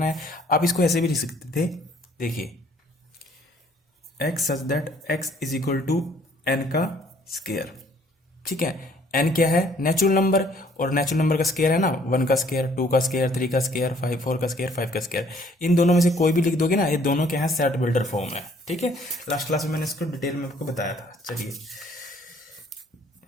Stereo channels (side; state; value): both; normal; correlation 0.60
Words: है। आप इसको ऐसे भी लिख सकते थे, देखिए x such that x is equal to n का स्क्वायर। ठीक है, n क्या है नेचुरल नंबर, और नेचुरल नंबर का स्क्वायर है ना 1 का स्क्वायर, 2 का स्क्वायर, 3 का स्क्वायर, 4 का स्क्वायर, 5 का स्क्वायर। इन दोनों में से कोई भी लिख दोगे ना, ये दोनों क्या है सेट बिल्डर फॉर्म है। ठीक है, लास्ट क्लास में मैंने इसको डिटेल में आपको बताया था। चलिए